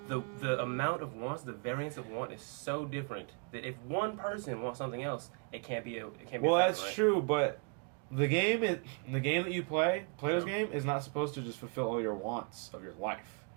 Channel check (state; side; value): quieter; left; 36.6 dB